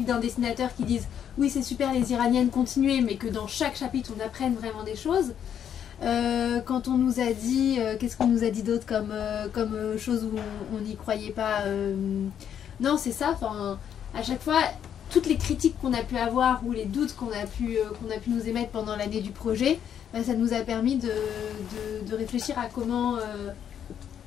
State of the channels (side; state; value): right; quieter; 9.0 dB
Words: d'un dessinateur qui dise oui c'est super les Iraniennes continuez, mais que dans chaque chapitre on apprenne vraiment des choses. Quand on nous a dit, qu'est-ce qu'on nous a dit d'autre comme chose où on n'y croyait pas, non c'est ça, à chaque fois toutes les critiques qu'on a pu avoir ou les doutes qu'on a pu nous émettre pendant l'année du projet, ça nous a permis de réfléchir à comment